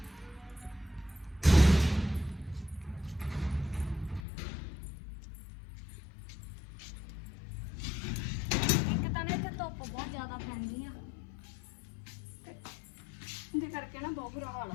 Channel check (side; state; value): right; drops out; at 4.2 s